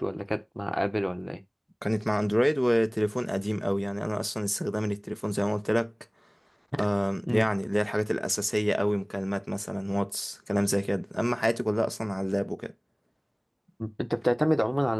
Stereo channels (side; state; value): both; identical; correlation 1.00